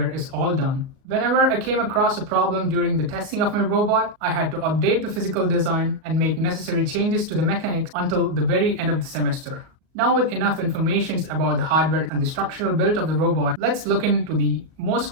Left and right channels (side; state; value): left; late; 38 ms